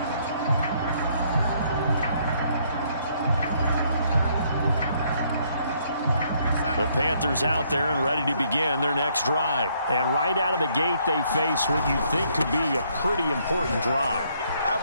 The Panthers out there and ready to begin their next drive. And right out of the gate, they face what you think could be a pretty important drive. I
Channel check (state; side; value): inverted; both; correlation -0.68